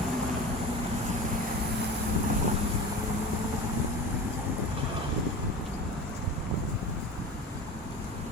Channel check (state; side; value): normal; both; correlation 0.33